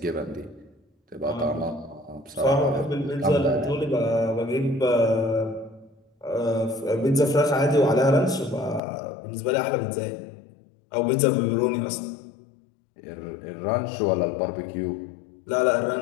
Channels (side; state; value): right; drops out; at 8.8 s